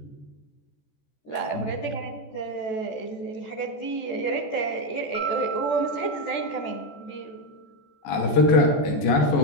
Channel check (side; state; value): right; late; 14 ms